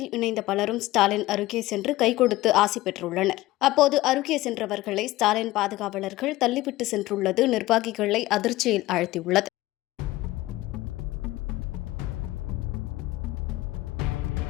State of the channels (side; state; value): right; quieter; 17.6 dB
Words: இணைந்த பலரும் ஸ்டாலின் அருகே சென்று கை கொடுத்து ஆசி பெற்றுள்ளனர். அப்போது அருகே சென்றவர்களை ஸ்டாலின் பாதுகாவலர்கள் தள்ளிவிட்டு சென்றுள்ளது நிர்வாகிகளை அதிர்ச்சியில் ஆழ்த்தியுள்ளது.